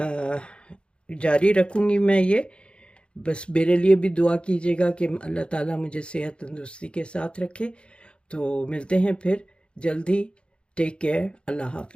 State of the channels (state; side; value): late; right; 0.056 ms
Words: जारी रखूँगी मैं ये। बस मेरे लिए भी दुआ कीजिएगा कि अल्लाह ताला मुझे सेहत तंदुरुस्ती के साथ रखे। तो मिलते हैं फिर जल्दी, टेक केयर, अल्लाह